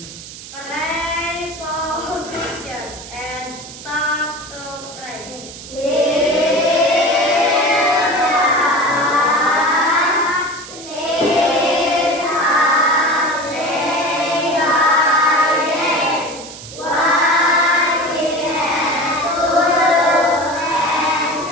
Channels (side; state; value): right; noise; hiss, 14 dB below the sound